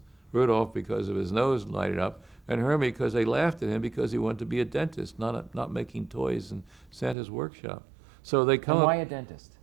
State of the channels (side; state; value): left; drops out; at 7.2 s